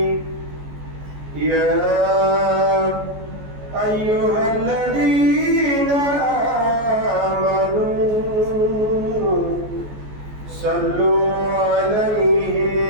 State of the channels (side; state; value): left; late; 14 ms